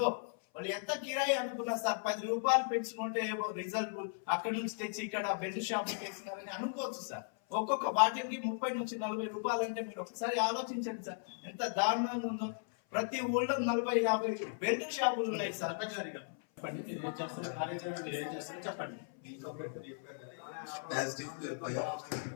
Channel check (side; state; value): right; silent; 53 dB below the other